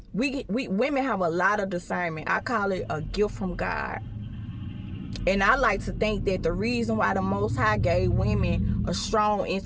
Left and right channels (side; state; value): both; identical; correlation 1.00